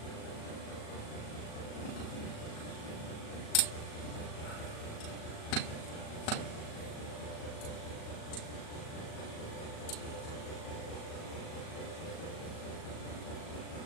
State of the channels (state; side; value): late; right; 37 ms